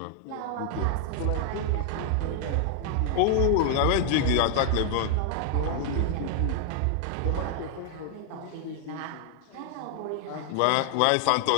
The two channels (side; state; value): both; different; correlation 0.00